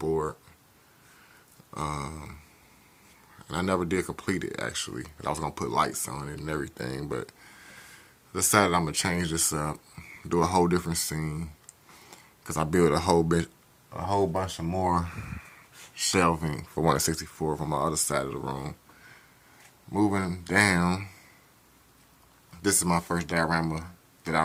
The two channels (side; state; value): both; identical; correlation 1.00